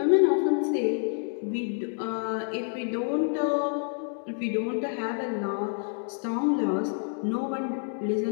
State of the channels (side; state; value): right; silent; 59 dB below the other